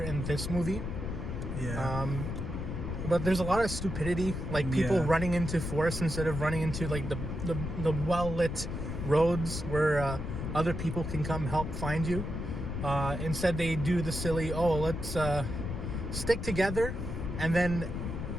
in this movie. Yeah. But there's a lot of stupidity, like people running into forests instead of running into like the well-lit roads where other people can come help find you. Instead, they do the silly, let's stick together, and then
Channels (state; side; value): noise; left; rumble, 4 dB below the sound